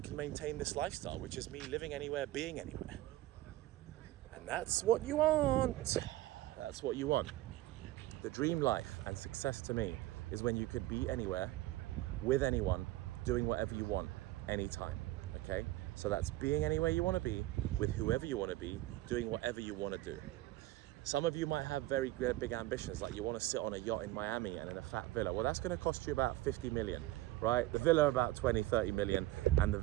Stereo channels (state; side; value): quieter; left; 16.9 dB